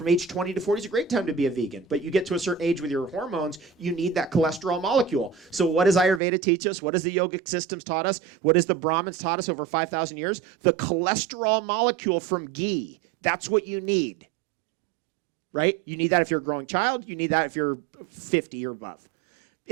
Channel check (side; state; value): left; drops out; at 6.2 s